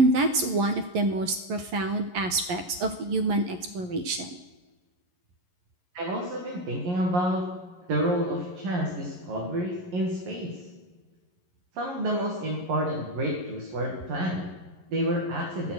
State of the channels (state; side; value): late; left; 11 ms